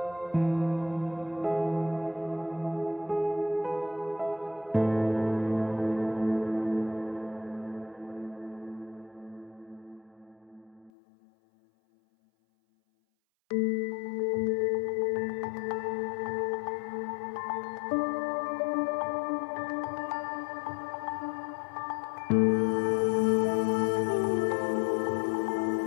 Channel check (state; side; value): drops out; right; at 10.9 s